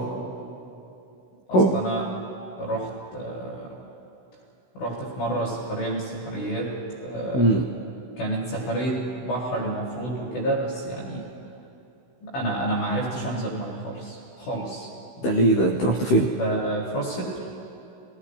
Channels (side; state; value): right; late; 16 ms